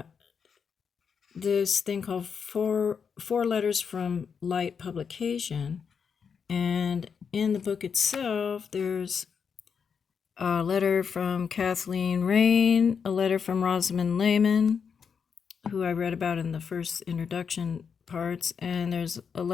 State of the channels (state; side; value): quieter; right; 6.5 dB